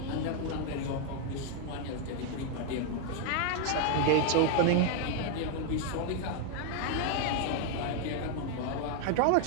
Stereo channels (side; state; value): both; different; correlation 0.00